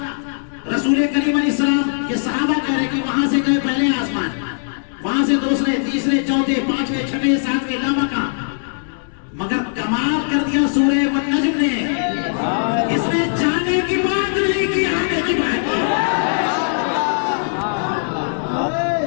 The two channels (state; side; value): silent; right; digital silence